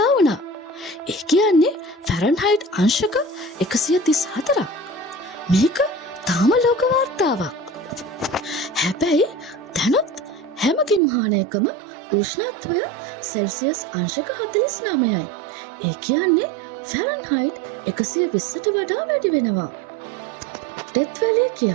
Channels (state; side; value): drops out; left; at 11.0 s